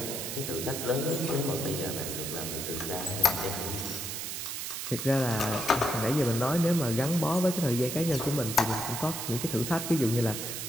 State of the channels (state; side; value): noise; right; hiss, 5 dB below the sound